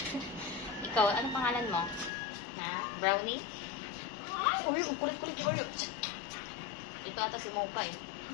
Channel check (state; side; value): drops out; right; at 2.1 s